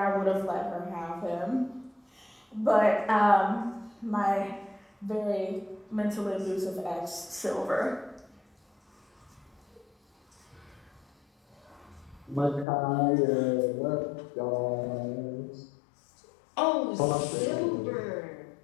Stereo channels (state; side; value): drops out; right; at 12.7 s